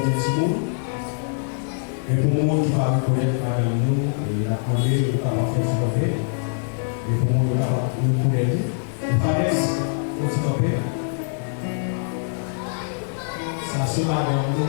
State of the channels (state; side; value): silent; right; digital silence